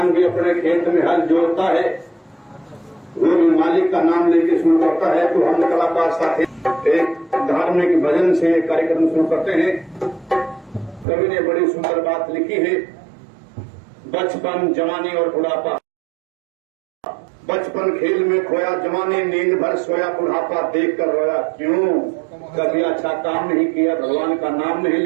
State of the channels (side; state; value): left; drops out; at 11.1 s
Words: भी अपने खेत में हल जोतता है, वो भी मालिक का नाम लेके शुरू करता है। तो हम कलाकार साथी एक धार्मिक भजन से कार्यक्रम शुरू करते हैं। कवि ने बड़ी सुंदर बात लिखी है, बचपन जवानी और बुढ़ापा। बचपन खेल में खोया, जवानी नींद भर सोया, बुढ़ापा देख कर रोया। क्यों? कभी अच्छा काम नहीं किया, भगवान का नाम नहीं